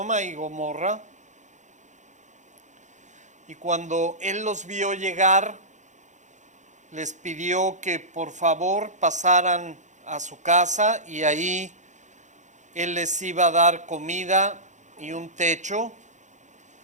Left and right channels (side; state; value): left; late; 0.35 ms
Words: y Gomorra. Y cuando él los vio llegar, les pidió que por favor pasaran a su casa y ahí él les iba a dar comida y un techo.